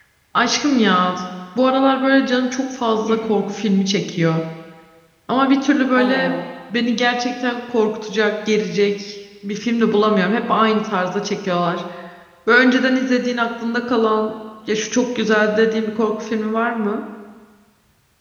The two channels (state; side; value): identical; both; correlation 1.00